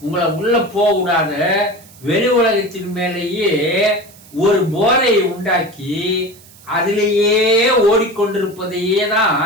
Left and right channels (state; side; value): noise; right; hiss, 24 dB below the sound